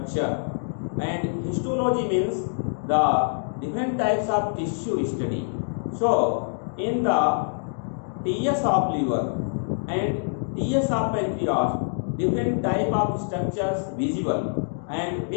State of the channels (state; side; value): silent; right; digital silence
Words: and histology means the different types of tissue study. So in the TS of liver and TS of pancreas, different type of structures visible, and